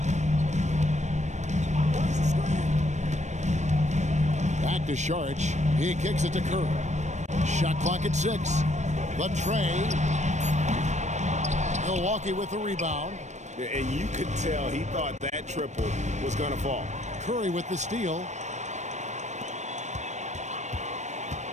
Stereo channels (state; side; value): late; left; 0.34 ms